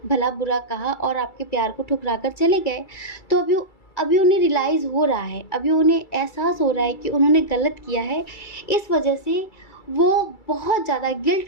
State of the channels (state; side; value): late; right; 2.3 ms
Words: भला बुरा कहा और आपके प्यार को ठुकरा कर चले गए। तो अभी उन्हें रियलाइज़ हो रहा है, अभी उन्हें एहसास हो रहा है कि उन्होंने गलत किया है। इस वजह से वो बहुत ज़्यादा